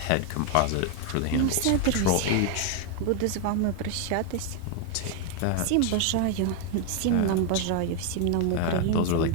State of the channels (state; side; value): different; both; correlation 0.01